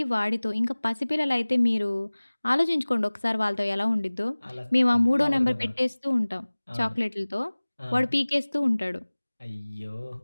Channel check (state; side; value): inverted; both; correlation -1.00